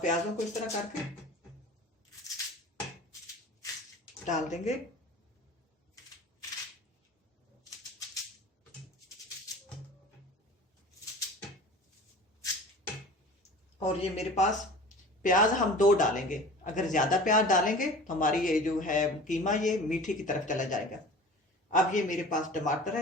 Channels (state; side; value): normal; both; correlation 0.40